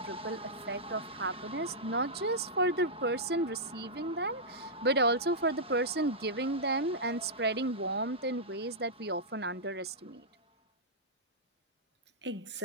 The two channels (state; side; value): normal; both; correlation -0.11